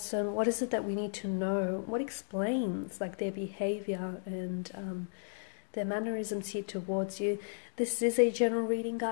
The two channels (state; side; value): silent; right; digital silence